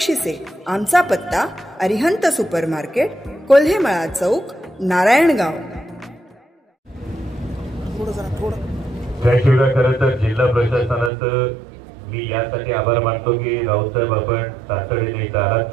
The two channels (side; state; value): left; drops out; at 11.1 s